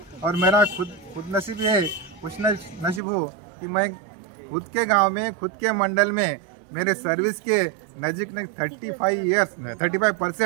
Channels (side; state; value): left; drops out; at 3.0 s